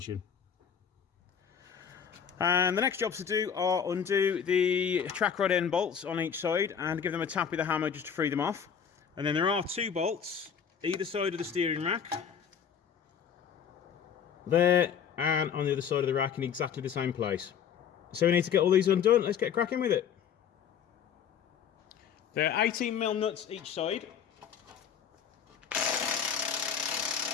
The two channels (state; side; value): quieter; right; 7.7 dB